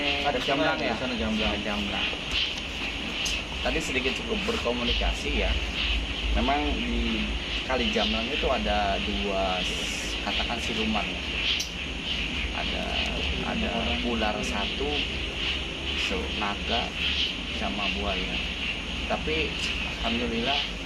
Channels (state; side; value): identical; both; correlation 1.00